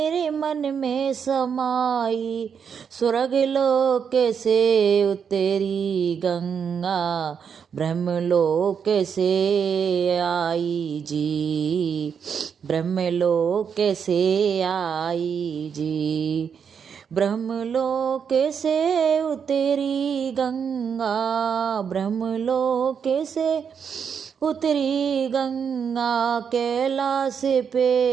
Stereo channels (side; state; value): left; quieter; 7.0 dB